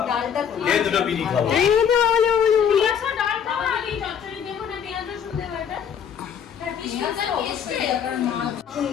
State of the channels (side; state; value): right; quieter; 8.0 dB